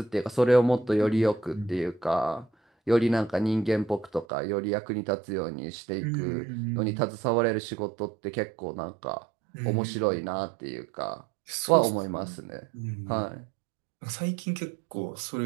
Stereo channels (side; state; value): left; drops out; at 4.2 s